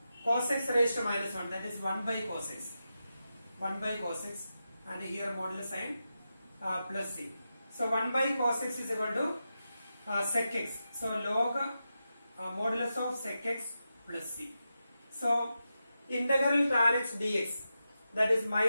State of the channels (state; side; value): inverted; both; correlation -0.89